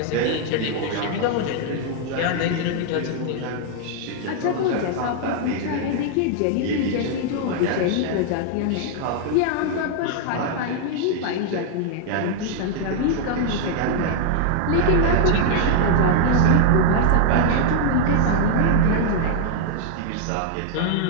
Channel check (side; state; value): both; different; correlation 0.00